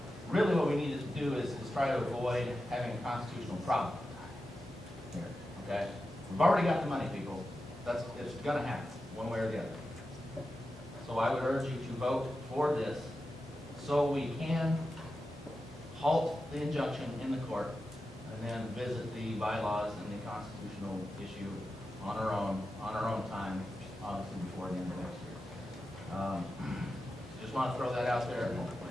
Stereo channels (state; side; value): normal; both; correlation 0.91